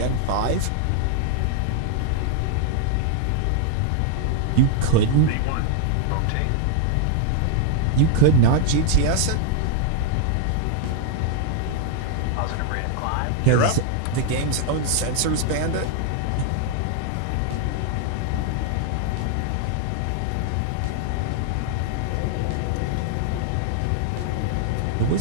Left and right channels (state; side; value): different; both; correlation 0.00